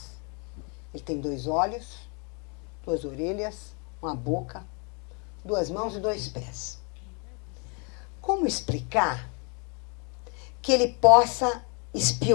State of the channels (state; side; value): quieter; right; 35.4 dB